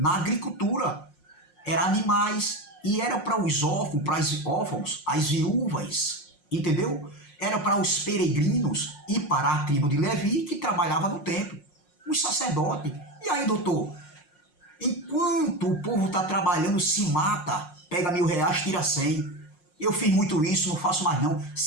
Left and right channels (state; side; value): late; right; 5.6 ms